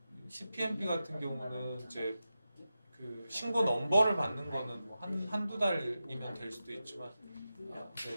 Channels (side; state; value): both; inverted; correlation -0.91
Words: CPMP 같은 경우는 이제 그 신고 넘버를 받는 거는 뭐 한두 달이면 될 수도 있지만